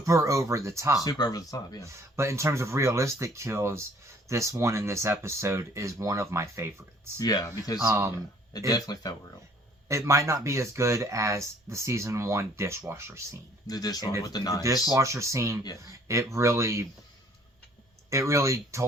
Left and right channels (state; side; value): normal; both; correlation 0.58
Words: over the top. Super over the top, yeah. But in terms of realistic kills, this one in this episode is one of my favorites. Yeah, because it definitely felt real. It might not be as good as the season 1 dishwasher scene. The dishwasher with the knives. The dishwasher scene, it really